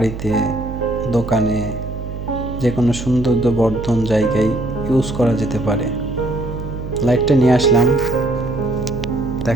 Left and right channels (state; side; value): noise; right; hum, 8 dB below the sound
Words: দোকানে, যে কোনো সৌন্দর্যবর্ধন জায়গায় ইউজ করা যেতে পারে। লাইটটা নিয়ে আসলাম